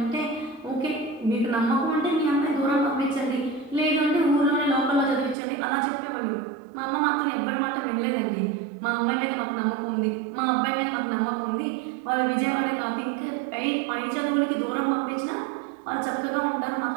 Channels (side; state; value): left; drops out; at 5.4 s